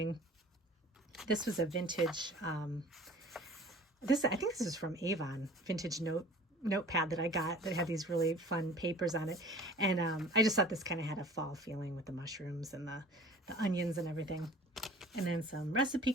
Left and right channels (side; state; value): both; normal; correlation 0.46